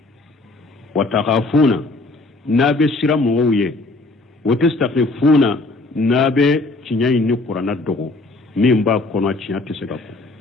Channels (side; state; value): right; quieter; 3.1 dB